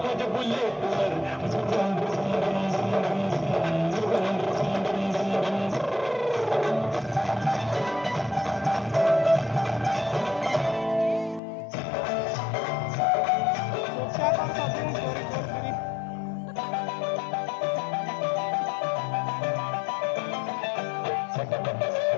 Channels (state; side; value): drops out; right; at 11.4 s